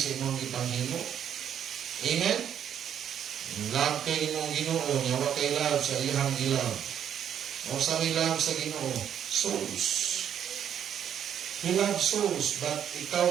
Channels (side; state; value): left; quieter; 9.2 dB